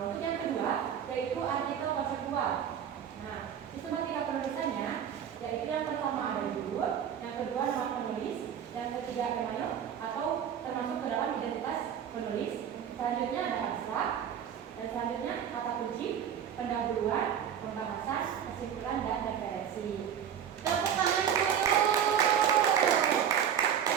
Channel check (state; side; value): quieter; left; 8.7 dB